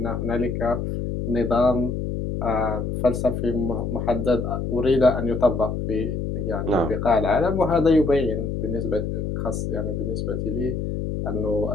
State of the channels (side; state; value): left; noise; hum, 3 dB below the sound